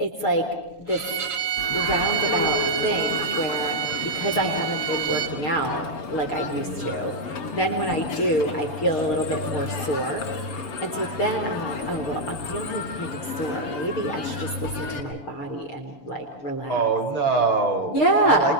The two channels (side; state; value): right; late; 6.9 ms